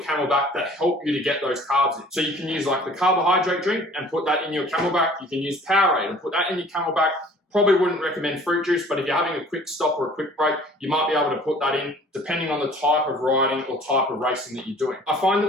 CamelBak that help you to get those carbs in. So you can use like the carbohydrate drink and put that in your CamelBak. You can use Powerade and put that in your CamelBak. Probably wouldn't recommend fruit juice, but if you're having a quick stop or a quick break, you might be able to put that in depending on the type of riding or type of racing that you're doing. I find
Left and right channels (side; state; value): both; normal; correlation 0.51